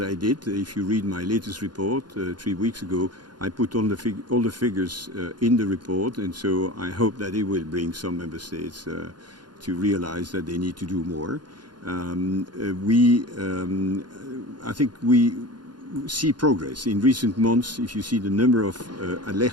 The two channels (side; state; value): left; late; 0.70 ms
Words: I did. If you read my latest report 3 weeks ago, I put all the figures in the report, and so I hope that it will bring some member states to realize that they need to do more. I think we see progress in recent months. If you see the number of